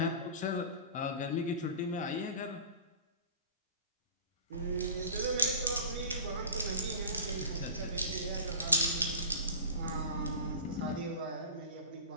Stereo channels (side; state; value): both; inverted; correlation -0.36